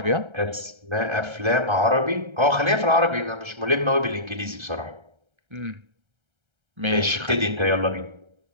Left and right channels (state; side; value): late; left; 1.3 ms